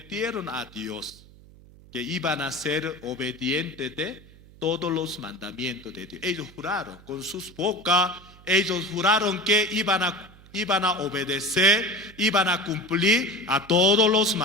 a Dios que iban a ser obedientes de todos los mandamientos de Dios. Ellos juraron con sus bocas, ellos juraron que iban a obedecer, iban a cumplir a todos los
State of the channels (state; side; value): noise; right; hum, 23 dB below the sound